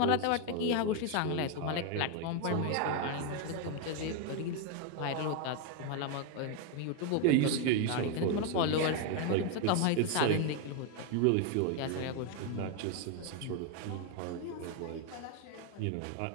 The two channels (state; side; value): different; both; correlation 0.01